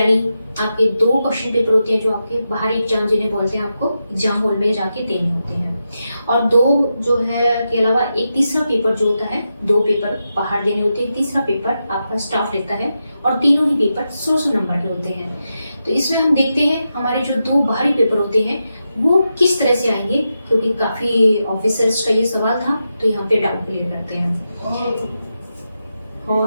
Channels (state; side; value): inverted; both; correlation -0.88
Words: आपके 2 क्वेश्चन पेपर होते हैं जो आपके बाहरी एग्जाम जिन्हें बोलते हैं, आपको एग्जाम हॉल में जाके देने होते हैं। और 2 जो है के अलावा एक तीसरा पेपर जो होता है, 2 पेपर बाहर देने होते हैं, तीसरा पेपर आपका स्टाफ लेता है और तीनों ही पेपर 100 नंबर के होते हैं। तो इसमें हम देखते हैं हमारे जो 2 बाहरी पेपर होते हैं वो किस तरह से आएंगे, क्योंकि काफी ऑफिसर्स का ये सवाल था, तो यहाँ पे डाउट क्लियर करते हैं।